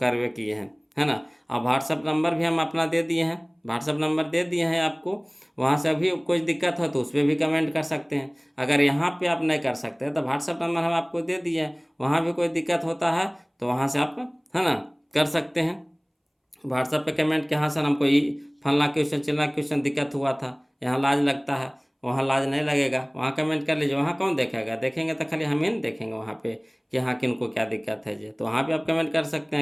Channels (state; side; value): identical; both; correlation 1.00